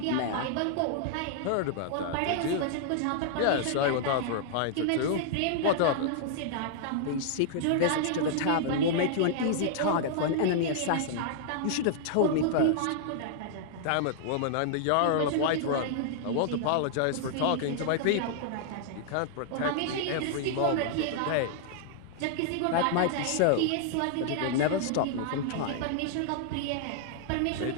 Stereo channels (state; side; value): different; both; correlation -0.01